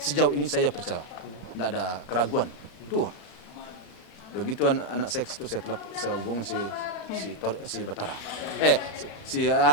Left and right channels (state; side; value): late; right; 35 ms